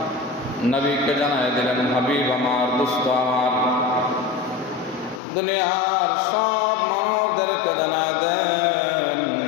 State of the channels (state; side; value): drops out; right; at 5.2 s